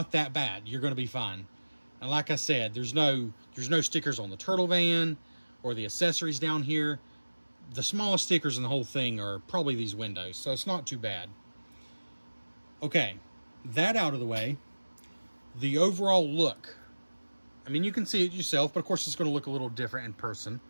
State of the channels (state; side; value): inverted; both; correlation -1.00